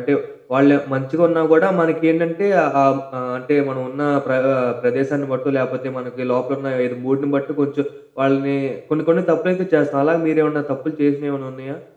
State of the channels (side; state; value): both; identical; correlation 1.00